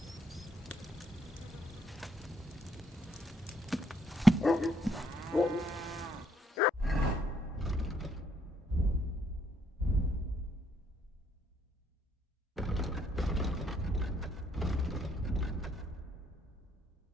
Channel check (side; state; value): both; normal; correlation 0.71